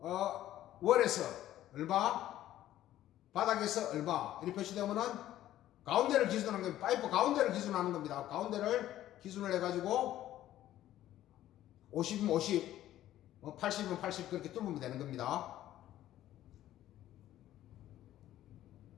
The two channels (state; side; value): quieter; right; 13.3 dB